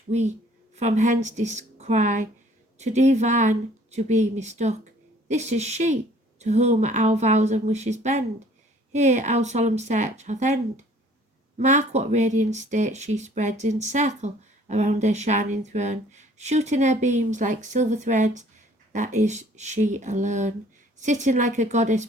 we from hence descry, to divine to be mistook. This is she, to whom our vows and wishes bend. Here our solemn search hath end. Mark what radiant state she spreads in circle around her shining throne, shooting her beams like silver threads, that is she alone, sitting like a goddess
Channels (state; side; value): normal; both; correlation 0.56